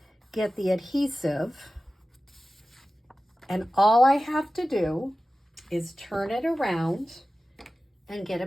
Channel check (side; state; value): both; normal; correlation 0.95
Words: get the adhesive. And all I have to do is turn it around and get a